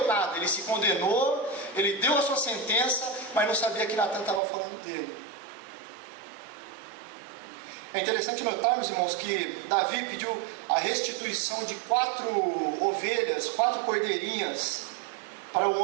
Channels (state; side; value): drops out; left; at 4.4 s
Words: nada, ele se condenou, ele deu a sua sentença, mas não sabia que Natan estava falando dele. É interessante notarmos, irmãos, que Davi pediu a restituição de 4 ovelhas, 4 cordeirinhas para o